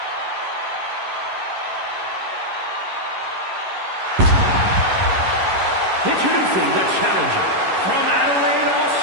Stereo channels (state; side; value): late; left; 11 ms